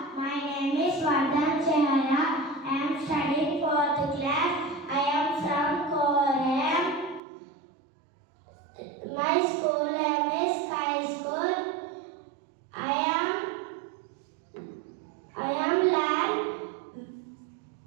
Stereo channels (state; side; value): drops out; left; at 7.2 s